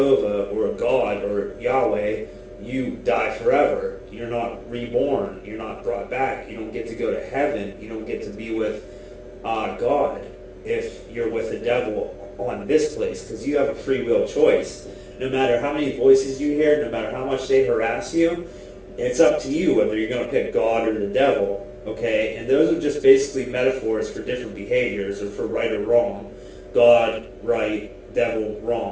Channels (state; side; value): identical; both; correlation 1.00